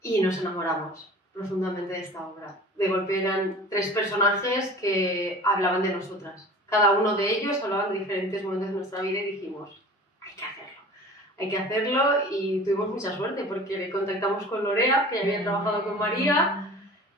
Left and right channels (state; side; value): normal; both; correlation 0.41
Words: y nos enamoramos profundamente de esta obra. De golpe eran 3 personajes que hablaban de nosotras. Cada uno de ellos hablaba de diferentes momentos de nuestra vida y dijimos, hay que hacerlo y tuvimos mucha suerte porque contactamos con Lorea, que ya había trabajado con María,